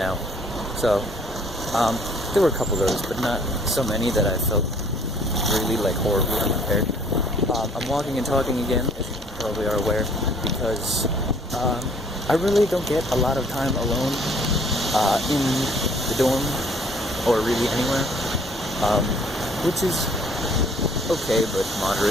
So, there were a couple of those, but not so many that I felt really like horribly unprepared. I'm walking and talking again, as you probably are aware, because I really don't get a lot of time alone in the dorm or really anywhere, which is okay but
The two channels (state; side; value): normal; both; correlation 0.58